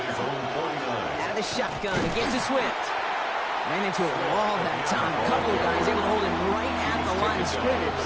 his own 49. Out of the shotgun. It gets to Swift. Ran into a wall that time. A couple of guys able to hold him right at the line of scrimmage.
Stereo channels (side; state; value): both; identical; correlation 1.00